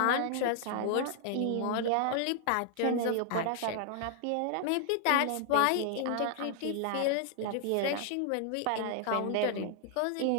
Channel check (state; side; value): different; both; correlation 0.00